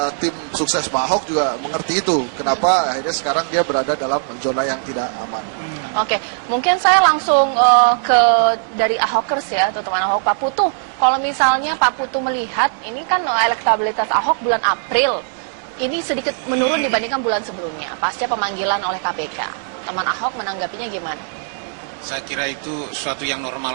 tim sukses Pak Ahok juga mengerti itu. Kenapa akhirnya sekarang dia berada dalam zona yang tidak aman. Oke, mungkin saya langsung ke dari Ahokers ya, atau teman Ahok, Pak Putu. Kalau misalnya Pak Putu melihat, ini kan elektabilitas Ahok bulan April, ini sedikit menurun dibandingkan bulan sebelumnya, pasca pemanggilan oleh KPK. Teman Ahok menanggapinya gimana? Saya kira itu suatu yang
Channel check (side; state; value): left; silent; digital silence